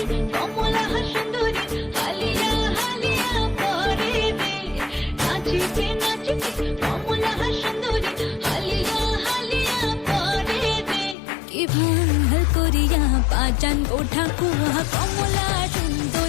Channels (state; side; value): drops out; right; at 11.2 s